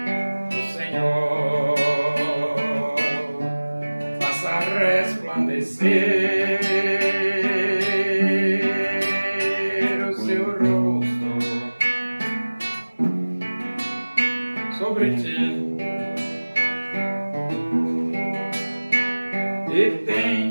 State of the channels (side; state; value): both; inverted; correlation -1.00